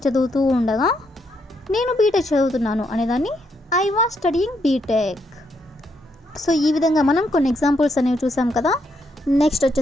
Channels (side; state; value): both; normal; correlation 0.77